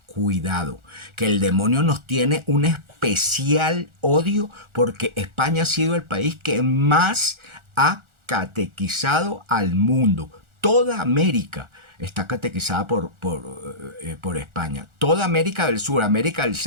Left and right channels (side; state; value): left; late; 1.4 ms